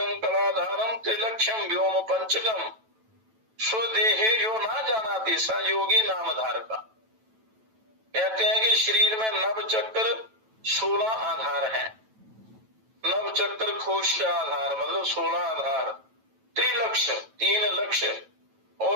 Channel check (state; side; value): late; left; 9.1 ms